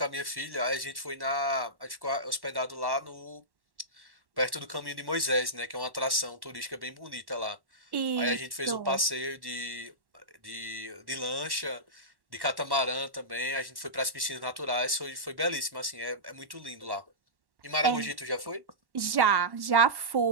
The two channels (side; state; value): left; late; 1.1 ms